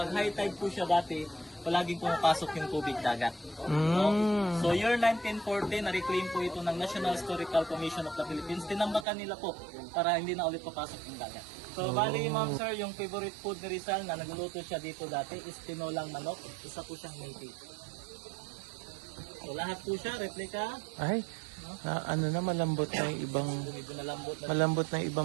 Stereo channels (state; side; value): drops out; left; at 9.1 s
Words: high tide po siya dati, palaging pumapasok yung tubig dagat. No? So year 1940, na-reclaim po ito ng National Historical Commission of the Philippines. Tinambakan nila po para hindi na ulit papasok yung dagat. So bali ma'am sir, yung favorite food ni Rizal na nagluluto siya dito dati is tinolang manok. Isa po siyang native. So lahat po siya, replica. Ay, ano na, malambot na yung ibang, Medyo nalambot na. malambot na yung